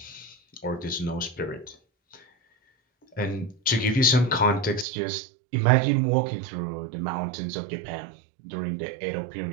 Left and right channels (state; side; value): drops out; left; at 4.9 s